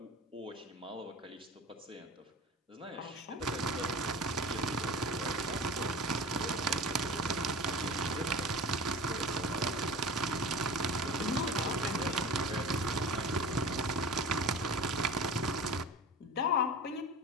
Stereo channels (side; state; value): both; normal; correlation 0.36